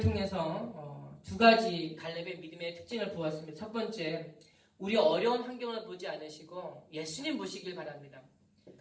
2가지 갈렙의 믿음의 특징을 보았습니다. 첫 번째, 우리 어려운 환경을 보지 않으시고 예수님 보시길 바랍니다.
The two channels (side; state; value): both; identical; correlation 1.00